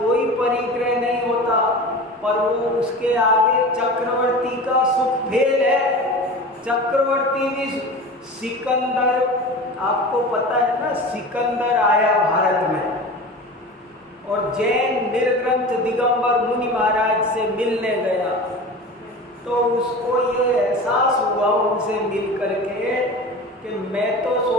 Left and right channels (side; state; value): both; normal; correlation 0.33